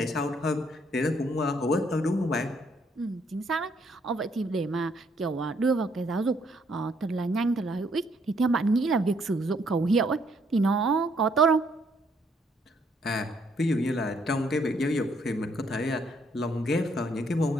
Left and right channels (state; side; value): normal; both; correlation 0.69